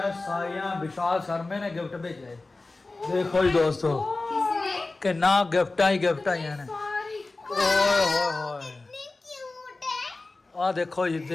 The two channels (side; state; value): right; quieter; 3.3 dB